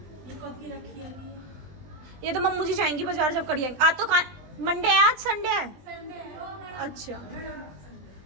ये कब की रखी है? ये तो मम्मू जी जाएंगी बाजार जब करी आएंगी। आज तो मंडे है, आज संडे है। अच्छा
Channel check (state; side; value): late; left; 20 ms